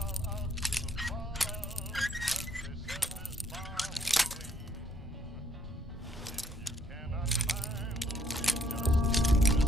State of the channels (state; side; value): normal; both; correlation 0.69